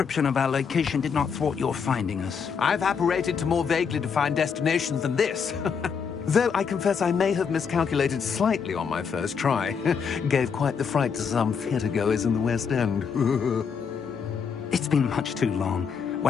of our location did not thwart your finding us. I've apparated to more vaguely defined destinations than this. Though I confess I may have miscalculated slightly on my first try. Gave quite the fright to some theatre-goers in the West End. It's been much too long.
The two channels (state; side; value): quieter; right; 6.3 dB